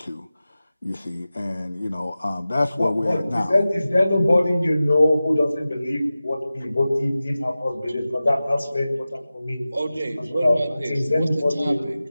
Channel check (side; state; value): both; inverted; correlation -0.95